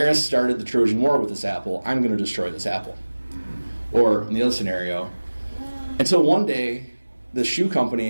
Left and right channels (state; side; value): inverted; both; correlation -1.00